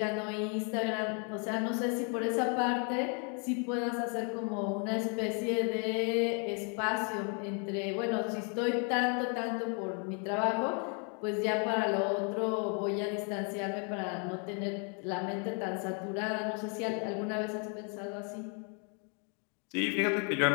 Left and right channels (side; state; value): right; quieter; 38.7 dB